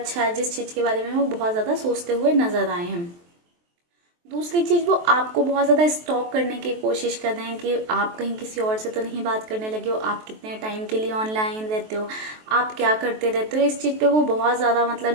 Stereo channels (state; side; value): late; left; 23 ms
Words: है, जिस चीज़ के बारे में वो बहुत ज़्यादा सोचते हुए नजर आए हैं। दूसरी चीज़, वो आपको बहुत ज़्यादा स्टॉक करने की कोशिश कर रहे हैं कि आप कहीं किसी और से तो नहीं बात करने लगे हो, आप कितने टाइम के लिए ऑनलाइन रहते हो, आप क्या करते रहते हो। इस चीज़ पे वो बहुत ज़्यादा मतलब